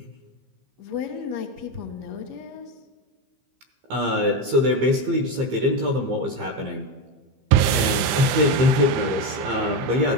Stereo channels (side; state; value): left; late; 15 ms